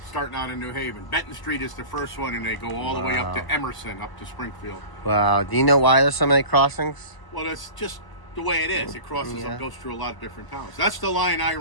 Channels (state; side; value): late; right; 1.0 ms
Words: Starting out in New Haven. Benton Street is the first one, and they go all the way up to Emerson, up to Springfield. Wow. Do you know why there's so many crossings? Well, it's just the way it is. It crosses and goes through a lot of different towns. That's the line I